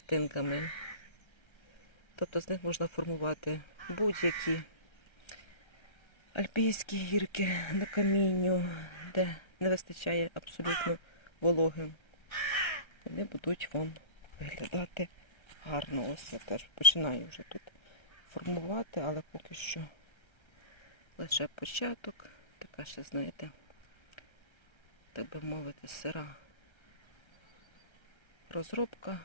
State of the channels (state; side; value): late; right; 1.3 ms